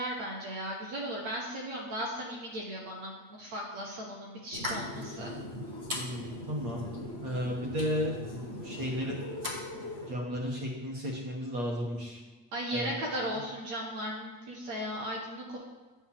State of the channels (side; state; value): left; late; 8.5 ms